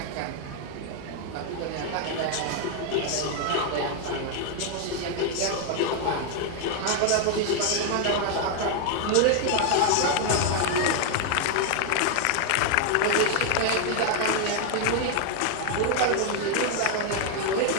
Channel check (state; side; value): different; both; correlation 0.01